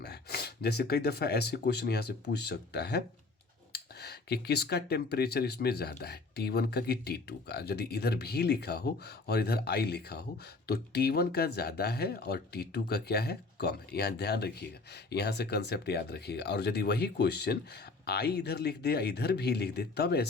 है। जैसे कई दफ़ा ऐसे क्वेश्चन यहाँ से पूछ सकता है कि किसका टेम्परेचर इसमें ज़्यादा है, T1 का कि T2 का। यदि इधर भी लिखा हो और इधर I लिखा हो तो T1 का ज़्यादा है और T2 का क्या है? कम है। यहाँ ध्यान रखिएगा, यहाँ से कंसेप्ट याद रखिएगा। और यदि वही क्वेश्चन I इधर लिख दे, इधर भी लिख दे, तब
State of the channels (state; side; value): quieter; right; 3.7 dB